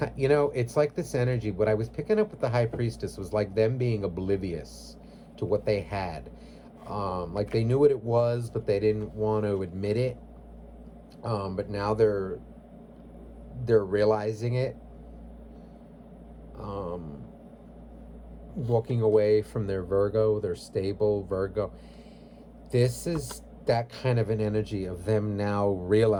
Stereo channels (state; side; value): identical; both; correlation 1.00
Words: like this energy. What I was picking up with the High Priestess was like them being oblivious to what they had. Like they knew what it was, but they didn't want to admit it. But now they're realizing it. Um, Walking away from their Virgo, their stable Virgo. This is that kind of an energy of them now